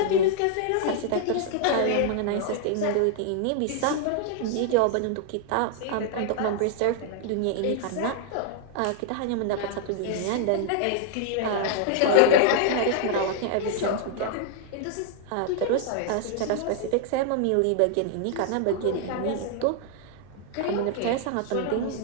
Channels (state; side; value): different; both; correlation -0.01